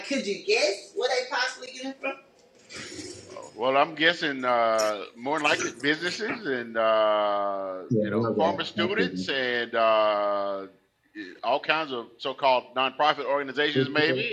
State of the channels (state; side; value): identical; both; correlation 1.00